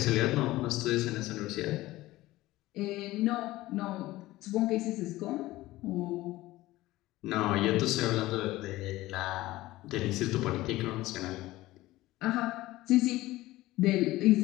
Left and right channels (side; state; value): right; quieter; 17.6 dB